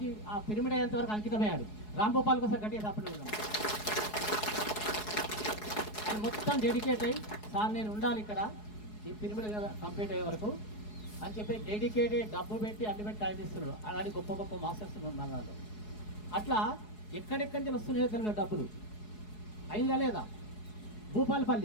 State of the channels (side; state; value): right; late; 4.7 ms